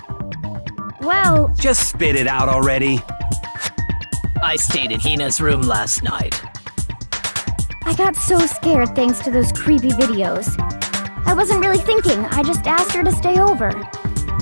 well... Just spit it out already. I stayed in Hina's room last night. I got so scared thanks to those creepy videos. I wasn't really thinking, I just asked her to stay over.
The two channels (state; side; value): inverted; both; correlation -1.00